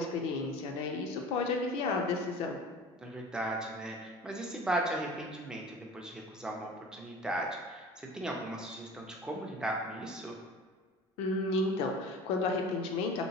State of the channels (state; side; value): normal; both; correlation 0.40